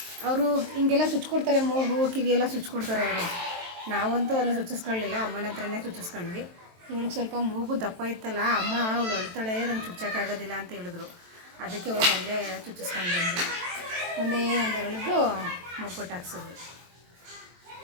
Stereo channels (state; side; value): late; left; 23 ms